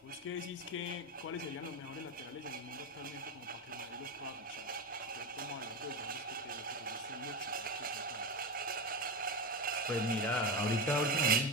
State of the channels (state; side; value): normal; both; correlation 0.18